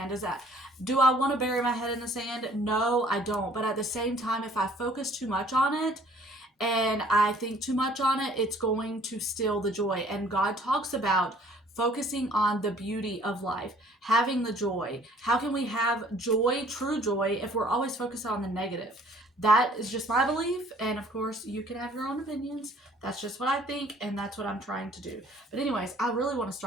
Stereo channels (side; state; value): both; normal; correlation 0.56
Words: Do I want to bury my head in the sand? No, I don't. But at the same time, if I focus too much on it and I think too much on it, it's going to steal the joy. And God talks about focusing on the beauty of life, having the joy. How can we have joy, true joy, if we're always focused on the negative? That is just my belief, and of course you can have your own opinions. That's just what I think, and that's what I'm trying to do. But anyways, I really want to